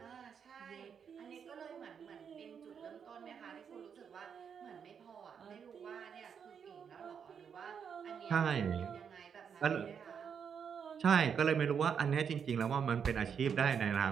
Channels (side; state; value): left; quieter; 7.2 dB